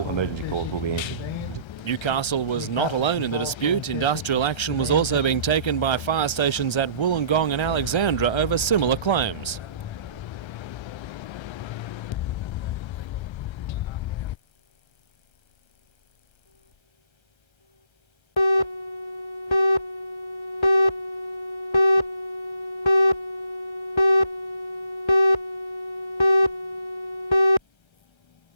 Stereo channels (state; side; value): late; right; 1.3 ms